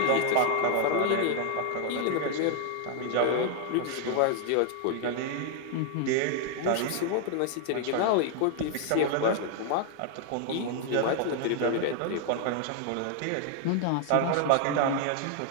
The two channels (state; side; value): different; both; correlation 0.00